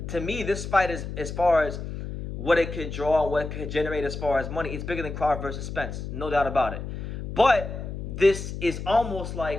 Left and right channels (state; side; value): noise; left; hum, 7 dB below the sound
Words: To me, this fight is, as far as what it could draw and what it could generate as far as money, it's bigger than Crawford versus Spence, no doubt about it. But this is almost